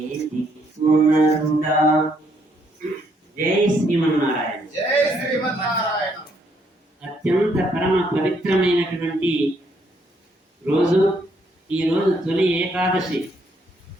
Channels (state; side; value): normal; both; correlation 0.71